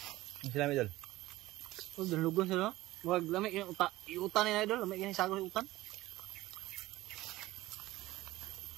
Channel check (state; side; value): quieter; left; 17.4 dB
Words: Ang sila may dol? Oh, dalugon sila. Wag lamig yung utan ni idol, lamig yung sago yung utan.